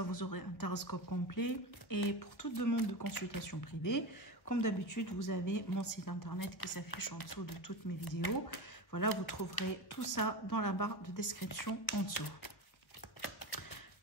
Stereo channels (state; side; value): late; right; 1.4 ms